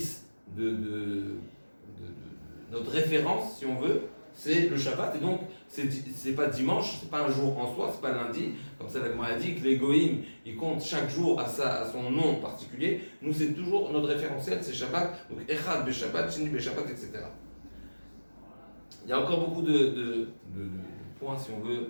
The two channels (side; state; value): both; inverted; correlation -1.00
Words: notre référence, si on veut, c'est le Shabbat. Et donc, c'est pas dimanche, c'est pas un jour en soi, c'est pas lundi. Comme ça, la Gemara a dit que les Goïm, ils comptent chaque jour à son nom particulier. Nous, c'est toujours notre référentiel, c'est Shabbat. Donc, Echad be Shabbat, Sheni be Shabbat, etc. Il y a encore beaucoup de points, si on veut,